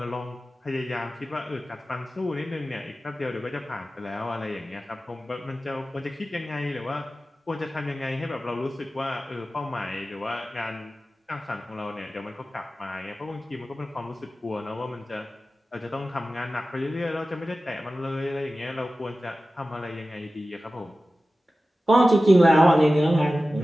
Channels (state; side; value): normal; both; correlation 0.95